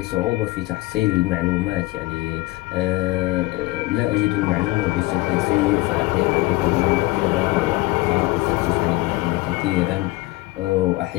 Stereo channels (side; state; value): right; quieter; 20.3 dB